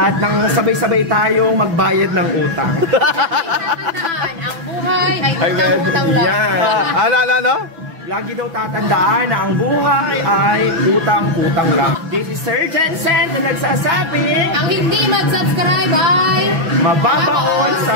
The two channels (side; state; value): left; late; 6.0 ms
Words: nang sabay-sabay tayong magbayad ng utang. Tatandaan, ang buhay ay utang-utang lang. Yan. Ano? Lagi daw tatandaan na ang buhay ay utang-utang lang. This is Sir Jensen na nagsasabing Ang hindi mag-subscribe ay mababaon